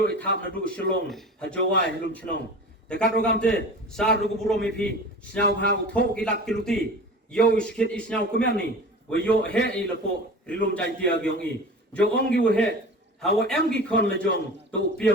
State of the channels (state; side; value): normal; both; correlation 0.36